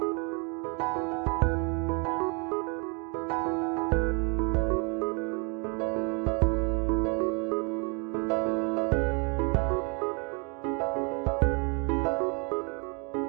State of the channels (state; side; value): quieter; left; 34.0 dB